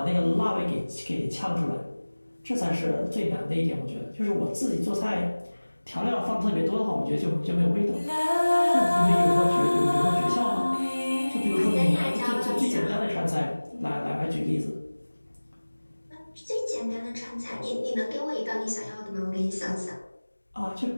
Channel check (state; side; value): inverted; both; correlation -1.00